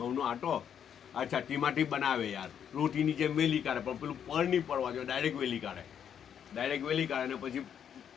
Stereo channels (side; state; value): right; quieter; 8.6 dB